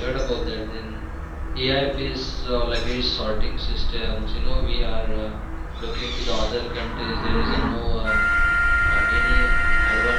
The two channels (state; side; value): identical; both; correlation 1.00